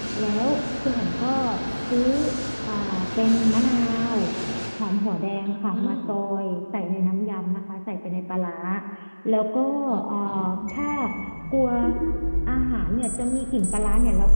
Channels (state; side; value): inverted; both; correlation -1.00